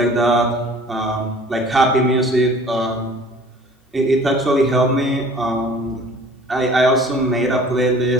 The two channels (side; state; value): both; normal; correlation 0.49